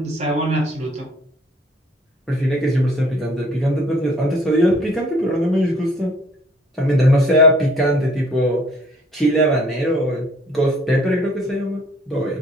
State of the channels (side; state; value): both; normal; correlation 0.59